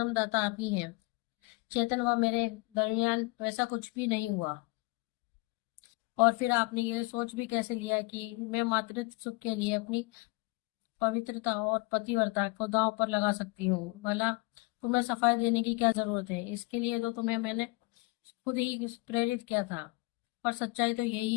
आप ही हैं। चेतन व मेरे दरमियान वैसा कुछ भी नहीं हुआ। और फिर आपने ये सोच भी कैसे लिया कि मैं मातृत्व सुख के लिए अपनी पवित्रता और पतिव्रता को दांव पर लगा सकती हूँ? भला तुम्हें सफाई देने की क्या जरूरत है? इसके लिए तो तुम्हें मैंने खुद ही प्रेरित किया था। पर सच्चाई तो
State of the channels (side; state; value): right; quieter; 23.7 dB